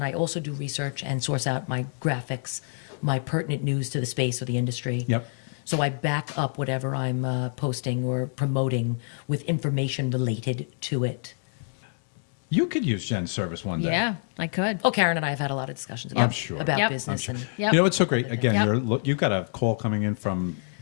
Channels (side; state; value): right; silent; digital silence